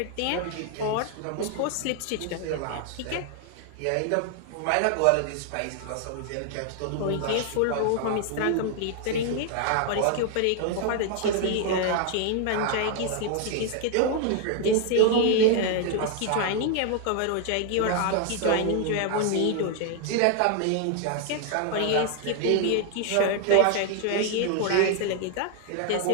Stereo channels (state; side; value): different; both; correlation 0.00